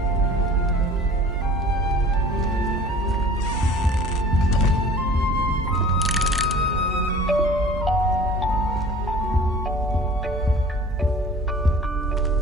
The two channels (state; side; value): normal; both; correlation 0.45